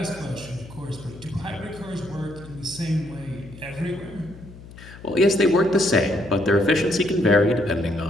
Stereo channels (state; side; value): noise; left; hum, 17 dB below the sound